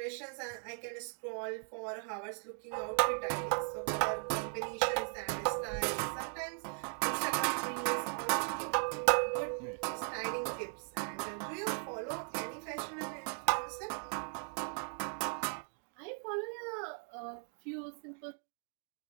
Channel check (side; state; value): left; silent; 53 dB below the other